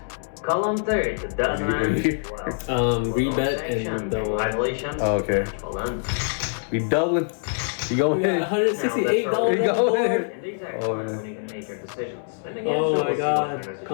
Column third, What dozen do you- ends. Rebet and double. Congratulations. Oh, okay. Well done. We doubling. You going We got in. $168 on You the go board. ahead. And the exact Oh, time man. when you can make your decisions. And again, Oh so my we'll see God. what kind of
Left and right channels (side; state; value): right; silent; 62 dB below the other